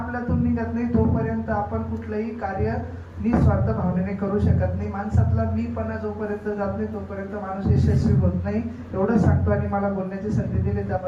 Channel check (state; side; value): identical; both; correlation 1.00